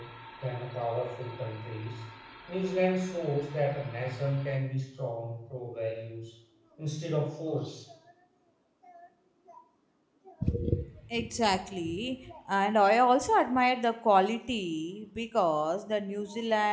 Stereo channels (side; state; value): both; identical; correlation 1.00